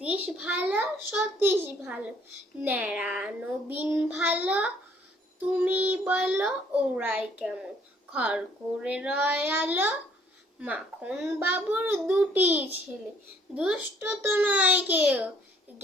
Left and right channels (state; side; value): normal; both; correlation 0.62